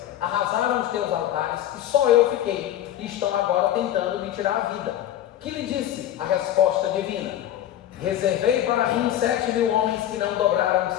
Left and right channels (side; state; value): right; quieter; 11.9 dB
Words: arrasaram os teus altares, e só eu fiquei, e estão agora tentando me tirar a vida. Que lhe disse a resposta divina? Reservei para mim 7.000 homens que não dobraram os